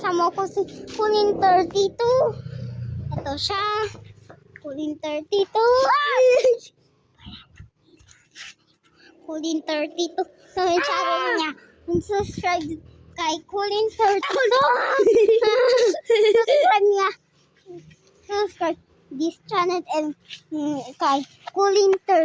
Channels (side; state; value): both; identical; correlation 1.00